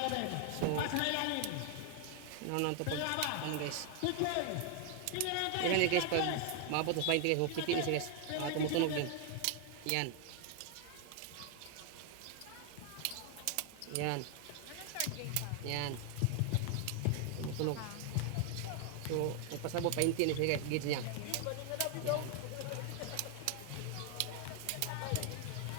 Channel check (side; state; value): both; different; correlation 0.00